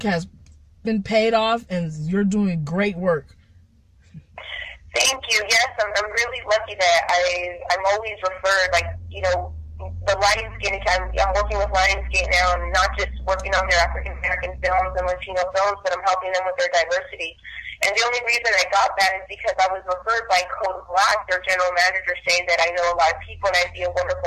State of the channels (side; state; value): both; identical; correlation 1.00